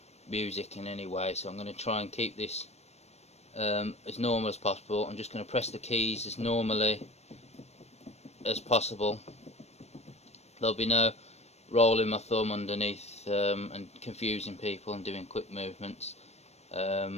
music in any way, so I'm going to try and keep this as normal as possible. I'm just going to press the keys as normally as possible. There'll be no rolling my thumb underneath and confusing people and doing quick movements,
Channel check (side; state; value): right; late; 0.31 ms